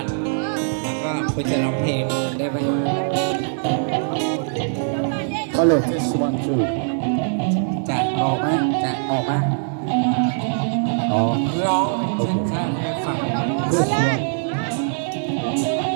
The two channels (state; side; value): silent; left; digital silence